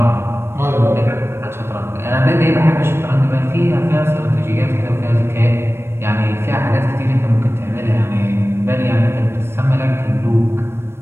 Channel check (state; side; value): late; left; 0.12 ms